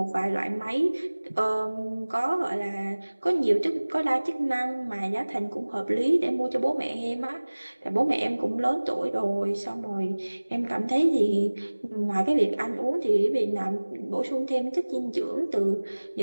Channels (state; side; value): inverted; both; correlation -1.00